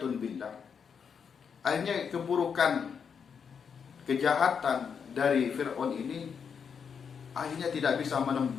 billah, akhirnya keburukan, kejahatan dari Fir'aun ini akhirnya tidak bisa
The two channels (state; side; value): quieter; right; 6.6 dB